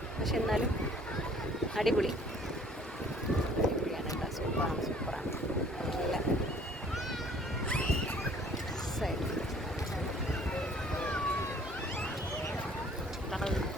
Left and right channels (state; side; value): normal; both; correlation 0.56